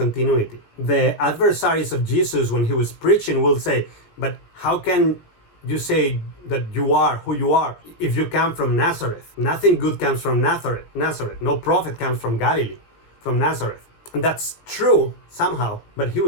The adversaries of Jesus, when he was preaching, will say, but how can you say that you are who you are if you come from Nazareth? Nothing good comes from Nazareth. No prophet comes from Galilee, from Nazareth. And that's true somehow, but he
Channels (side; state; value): right; late; 17 ms